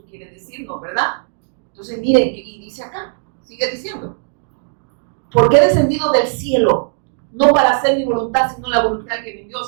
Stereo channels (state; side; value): silent; left; digital silence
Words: quiere decirnos, ¿verdad? Entonces, mire, y dice acá, sigue diciendo. Porque he descendido del cielo, no para hacer mi voluntad, sino la voluntad que me envió. O